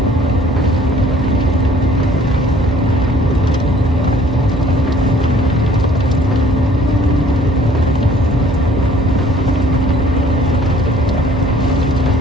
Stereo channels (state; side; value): normal; both; correlation 0.56